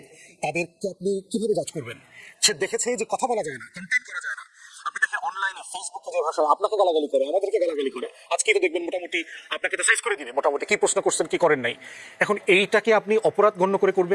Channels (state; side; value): identical; both; correlation 1.00